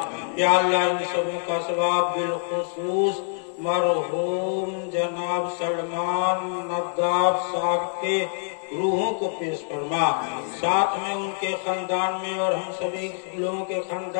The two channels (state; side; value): silent; right; 61 dB below the other